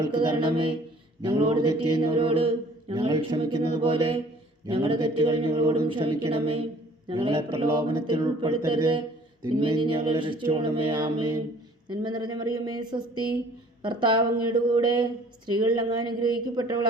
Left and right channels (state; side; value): normal; both; correlation 0.54